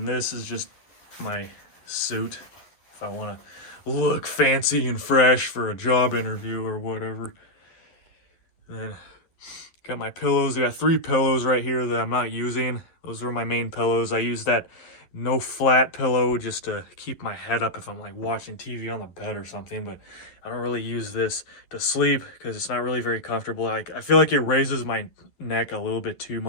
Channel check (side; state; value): right; late; 11 ms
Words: this is just my suit. If I want to look fancy and fresh for a job interview or whatever. And then got my pillows. I got 3 pillows right here that I'm not using. Those are my main pillows. I use that no flat pillow just to keep my head up if I'm like watching TV on the bed or something, but I don't really use this to sleep because it's not really very comfortable. I feel like it raises my neck a little bit too